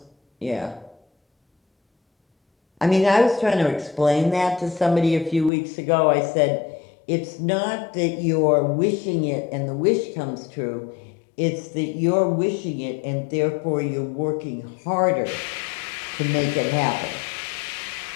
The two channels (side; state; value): right; drops out; at 5.5 s